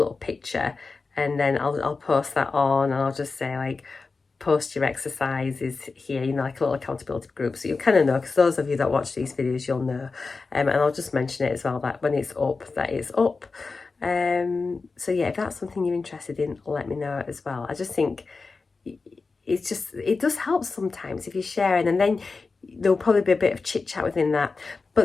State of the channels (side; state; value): right; quieter; 4.2 dB